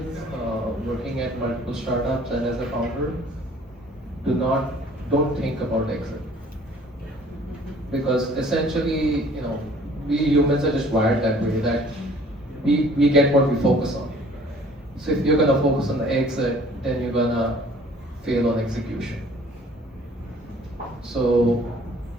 working at multiple startups and as a founder, don't think about exit. Because essentially, we humans are just wired that way, that we get what we focus on. So if you're gonna focus on the exit, then you're gonna fail on execution. So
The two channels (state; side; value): normal; both; correlation 0.54